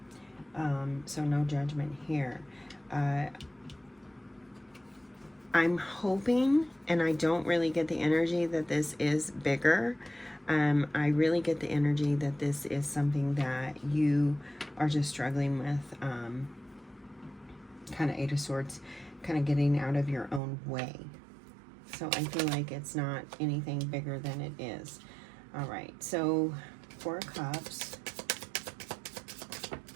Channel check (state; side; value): drops out; left; at 20.4 s